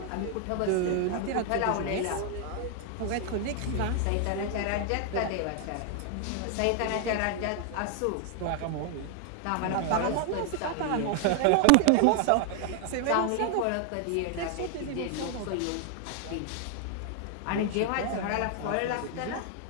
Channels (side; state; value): both; different; correlation 0.00